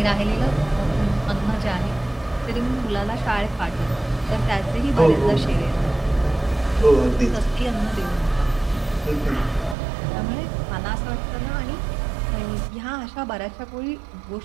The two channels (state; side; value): drops out; left; at 9.8 s